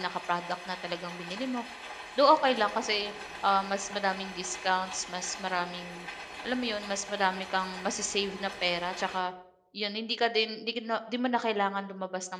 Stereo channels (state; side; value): identical; both; correlation 1.00